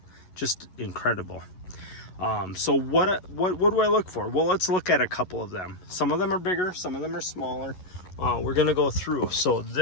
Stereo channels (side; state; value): right; late; 11 ms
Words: Just incredible. So what do I look for? Well, let's look at a couple of them. Some of them are bigger, some of them are smaller. We're gonna go through. So